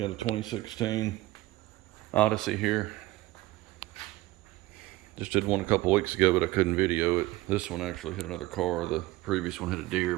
a 2016 Odyssey here. Just did one a couple weeks ago, but I couldn't video it. This one actually hit another car. The previous one hit a deer,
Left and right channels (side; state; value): left; quieter; 18.5 dB